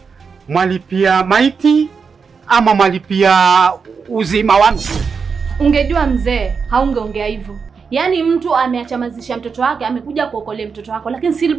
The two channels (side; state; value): left; quieter; 5.6 dB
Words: mwalipia maiti ama mwalipia uzima wa mtu? Ungejua mzee, haungeongea hivyo. Yaani mtu ameachamazisha mtoto wake, amekuja kuokolea mtoto wako, lakini still